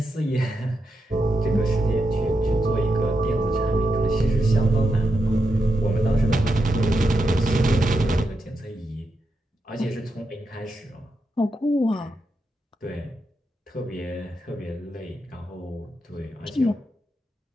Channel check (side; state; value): both; normal; correlation 0.86